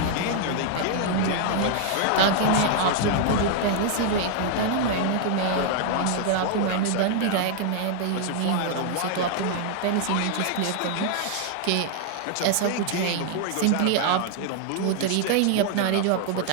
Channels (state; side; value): different; both; correlation 0.00